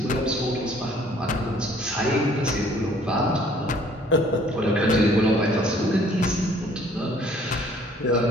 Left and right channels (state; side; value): normal; both; correlation 0.58